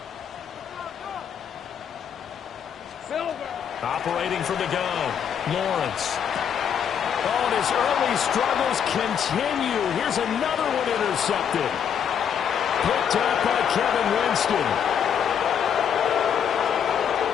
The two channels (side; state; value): right; quieter; 8.2 dB